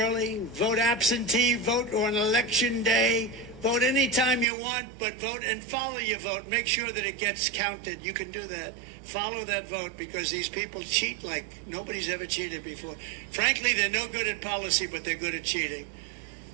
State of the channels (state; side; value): drops out; left; at 4.5 s